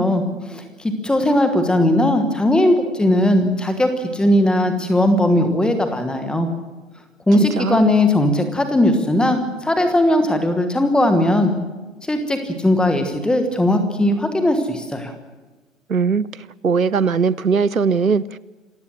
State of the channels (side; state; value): both; normal; correlation 0.70